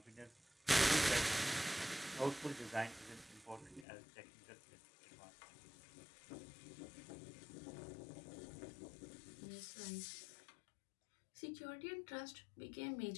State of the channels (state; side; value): drops out; right; at 3.9 s